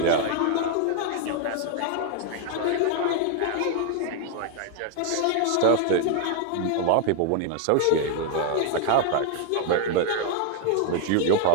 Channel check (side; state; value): both; different; correlation 0.00